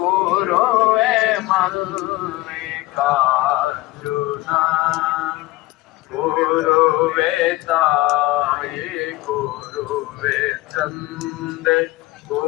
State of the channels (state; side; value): quieter; right; 18.9 dB